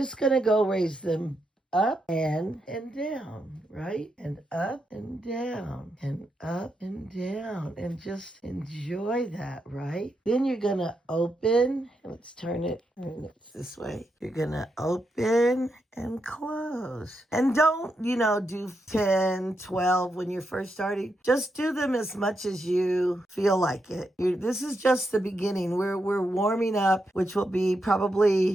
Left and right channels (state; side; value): normal; both; correlation 0.83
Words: going to go raise them up and down, right? And up and down and up and down, and just enjoy that, right? Then you're going to open. Let's turn it this way. You're going to open and close. And don't, do 10, 12 when you're first starting. Just do them as much as you feel like it. This is just the beginning. We're warming up, which will be